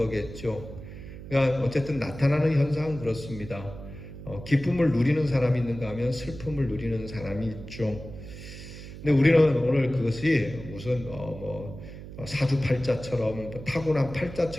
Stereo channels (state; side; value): noise; right; hum, 13 dB below the sound